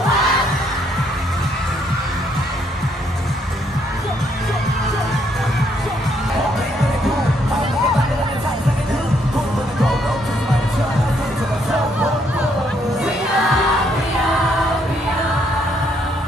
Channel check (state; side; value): normal; both; correlation 0.71